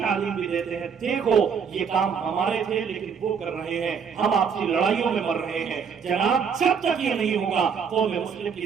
بھی دیتے ہیں۔ دیکھو یہ کام ہمارے تھے لیکن وہ کر رہے ہیں، ہم آپسی لڑائیوں میں مر رہے ہیں۔ جناب جب تک یہ نہیں ہوگا قوم مسلم کی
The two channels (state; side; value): quieter; left; 6.6 dB